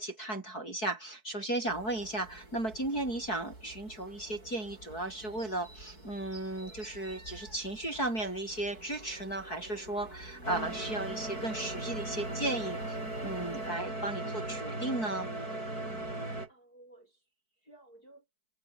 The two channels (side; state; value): right; late; 4.6 ms